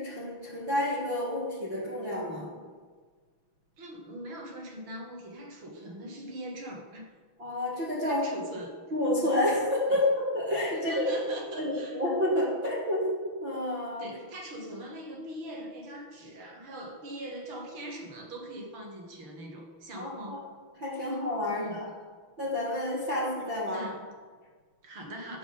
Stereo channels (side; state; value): left; late; 6.1 ms